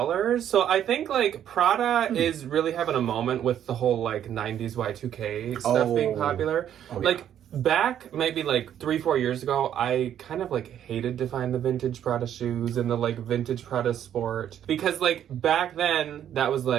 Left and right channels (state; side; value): quieter; left; 10.2 dB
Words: So I think like Prada is really having a moment with the whole like 90s Y2K stuff being popular. Like back maybe like 3-4 years ago, I kind of like hated to find the vintage Prada shoes and the like vintage Prada Sport, because like back then that was